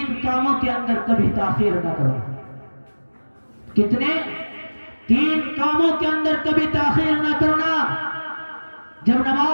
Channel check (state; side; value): inverted; both; correlation -1.00